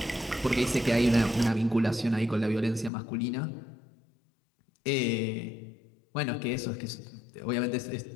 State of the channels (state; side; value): drops out; right; at 2.9 s